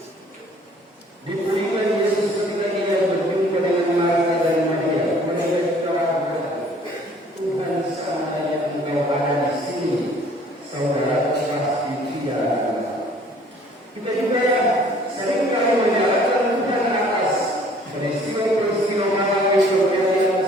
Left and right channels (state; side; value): normal; both; correlation 0.55